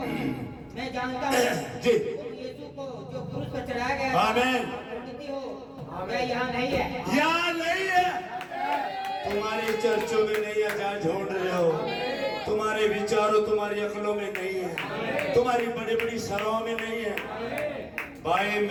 मैं जानता हूँ जी यीशु को जो क्रूस पर चढ़ाया गया, आमीन, प्रकृति हो, वह यहाँ नहीं है, यहाँ नहीं है। तुम्हारे चर्चों में नहीं है जहाँ ढूंढ रहे हो, तुम्हारे विचारों तुम्हारी अकलों में नहीं है, तुम्हारी बड़ी बड़ी सराहों में नहीं है। भाई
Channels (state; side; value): identical; both; correlation 1.00